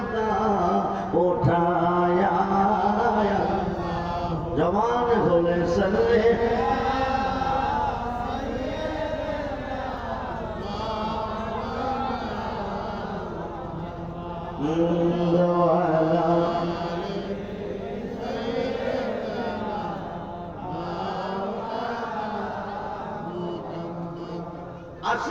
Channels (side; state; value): both; identical; correlation 1.00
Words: ওঠায়া জবান খুলেছে সাল্লি